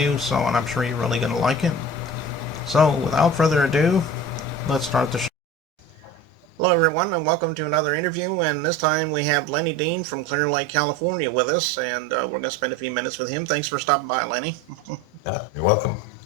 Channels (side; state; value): both; normal; correlation 0.35